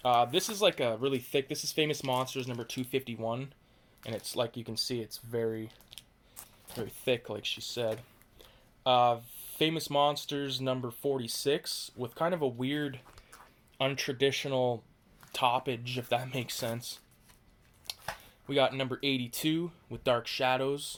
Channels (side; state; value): both; identical; correlation 1.00